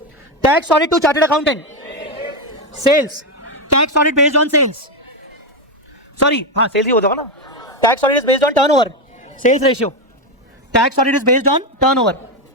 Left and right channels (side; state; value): both; normal; correlation 0.09